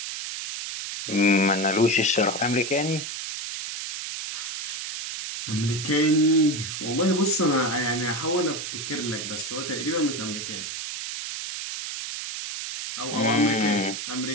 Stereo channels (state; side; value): noise; right; hiss, 6 dB below the sound